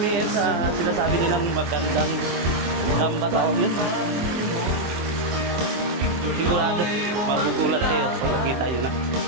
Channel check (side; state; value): left; late; 24 ms